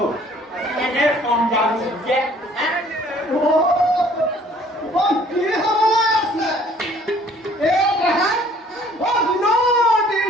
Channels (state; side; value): normal; both; correlation 0.56